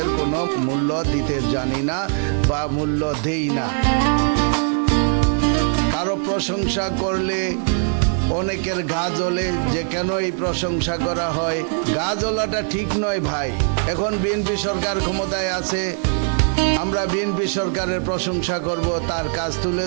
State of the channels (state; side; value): silent; left; 59 dB below the other